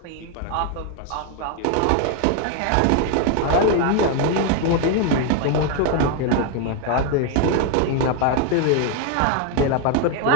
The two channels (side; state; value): both; different; correlation 0.01